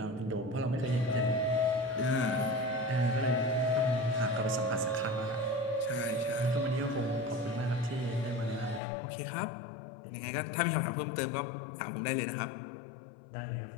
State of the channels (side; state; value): right; drops out; at 8.8 s